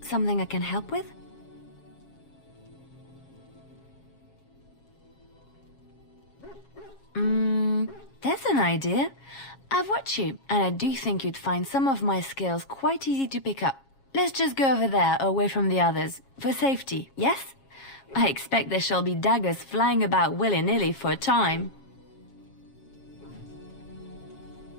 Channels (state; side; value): late; right; 7.3 ms